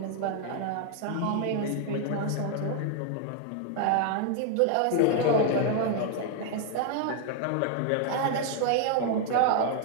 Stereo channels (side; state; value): both; different; correlation 0.00